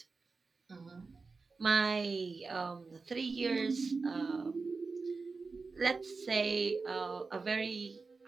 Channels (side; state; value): left; quieter; 4.3 dB